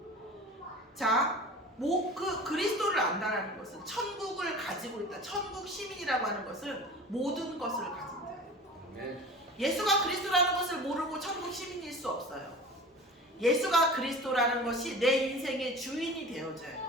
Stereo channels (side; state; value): both; normal; correlation 0.38